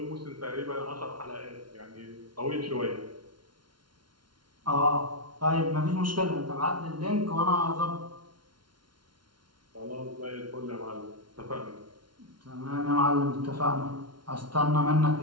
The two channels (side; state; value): left; late; 0.72 ms